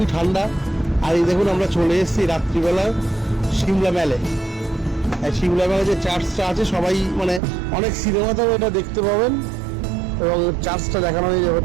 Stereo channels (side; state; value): left; drops out; at 7.4 s